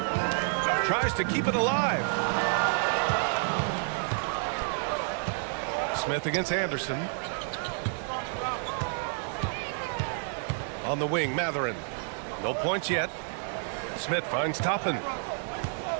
Tries to keep it alive. Smith against Anderson. On the wing, Matherin. No points yet. Smith finds Toppin.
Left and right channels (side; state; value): left; silent; 58 dB below the other